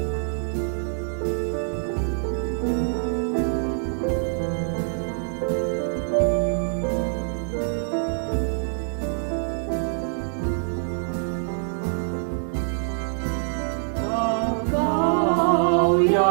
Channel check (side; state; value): left; silent; digital silence